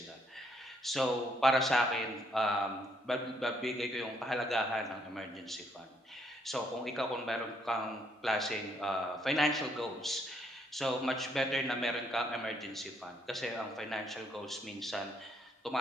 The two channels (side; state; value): both; normal; correlation 0.70